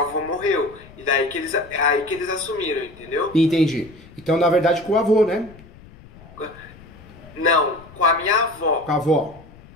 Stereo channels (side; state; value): left; noise; rumble, 22 dB below the sound